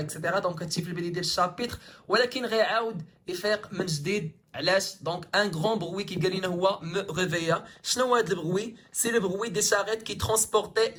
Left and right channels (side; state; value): both; identical; correlation 1.00